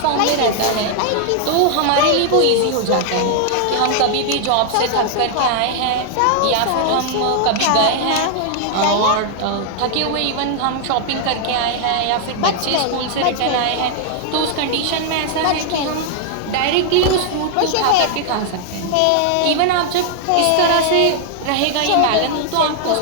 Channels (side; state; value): both; different; correlation 0.00